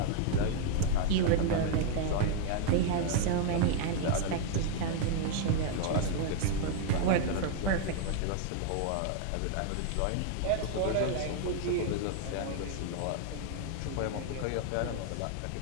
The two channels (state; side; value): different; both; correlation 0.00